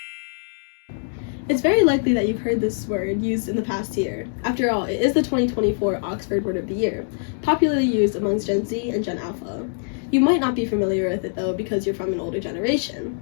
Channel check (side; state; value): right; silent; digital silence